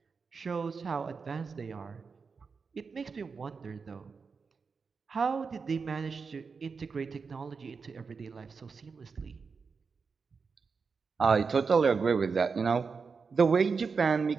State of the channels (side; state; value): left; quieter; 5.1 dB